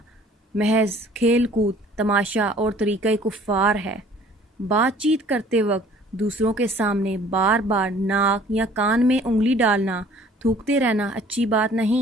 محض کھیل کود، تماشا اور طریقہ کفار ہے۔ بات چیت کرتے وقت دوسروں کے سامنے بار بار ناک یا کان میں انگلی ڈالنا، تھوکتے رہنا اچھی بات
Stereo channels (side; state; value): both; normal; correlation 0.53